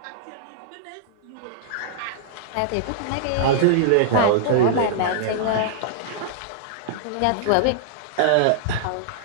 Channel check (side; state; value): both; different; correlation -0.01